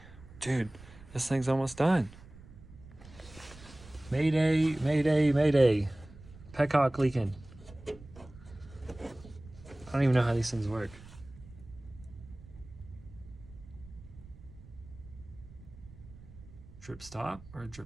Dude, this thing's almost done. Mayday, mayday, mayday. Petcock leaking. I don't even know how these things work. Drip stop or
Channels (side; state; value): right; noise; rumble, 19 dB below the sound